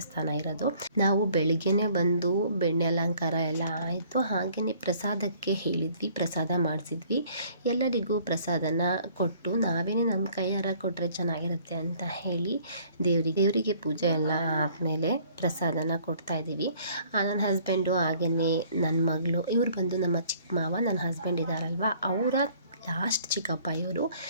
ಇರೋದು. ನಾವು ಬೆಳಿಗ್ಗೆನೆ ಬಂದು ಬೆಣ್ಣೆ ಅಲಂಕಾರ ಎಲ್ಲ ಆಯಿತು. ಹಾಗೆಯೇ ಪ್ರಸಾದಕ್ಕೆ ಹೇಳಿದ್ವಿ, ಪ್ರಸಾದ ಮಾಡಿಸಿದ್ವಿ. ಎಲ್ಲರಿಗೂ ಪ್ರಸಾದನ ಕೊಟ್ಟು ನಾವೇನೇ ನಮ್ಮ ಕೈಯಾರ ಕೊಟ್ಟರೆ ಚೆನ್ನಾಗಿರುತ್ತೆ ಅಂತ ಹೇಳಿ ದೇವರಿಗೆ ಪೂಜೆ ಎಲ್ಲ ಆದಮೇಲೆ ಪ್ರಸಾದನ ಕೊಡ್ತಾ ಇದ್ದೀವಿ. ನನ್ನ ಹಸ್ಬೆಂಡು ಹಾಗೆಯೇ ನನ್ನ ಮಗಳು, ಇವ್ರು ಬಂದು ನಮ್ಮ ಚಿಕ್ಕ ಮಾವ, ನನ್ನ ಹಸ್ಬೆಂಡ್ ಇದ್ದಾರಲ್ವ ಅವರ ಲಾಸ್ಟ್ ಚಿಕ್ಕಪ್ಪ ಇವರು.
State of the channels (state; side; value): inverted; both; correlation -0.58